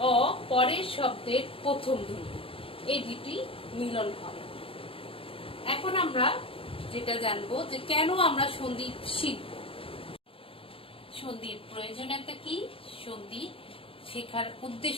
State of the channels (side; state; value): right; late; 0.27 ms